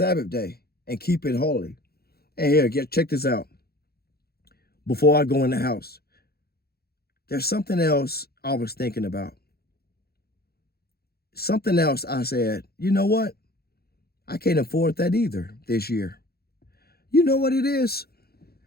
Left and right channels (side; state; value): right; late; 0.46 ms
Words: day and keep it holy. And here, check this out. Before I go in the house, there's something else I was thinking about. Something else I said, you know what? I can't afford that either this year. You know what it is?